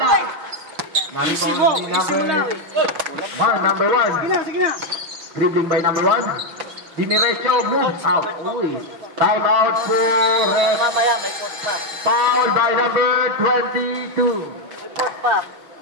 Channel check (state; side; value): late; left; 6.1 ms